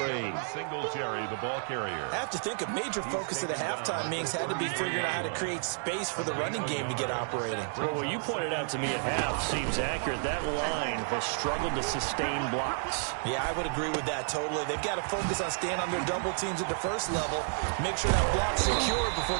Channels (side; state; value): left; silent; digital silence